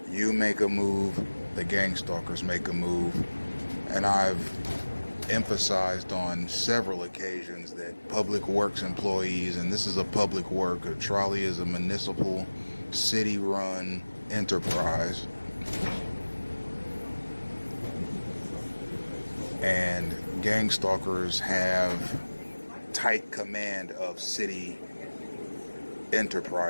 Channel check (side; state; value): both; inverted; correlation -1.00